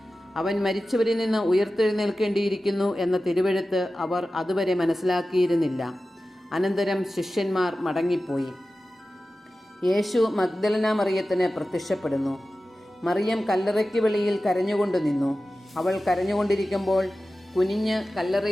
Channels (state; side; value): normal; both; correlation 0.95